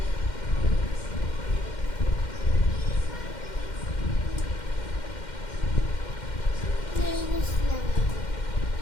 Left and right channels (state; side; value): late; right; 2.1 ms